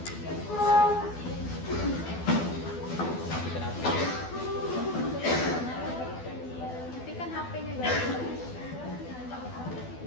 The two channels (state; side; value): late; right; 12 ms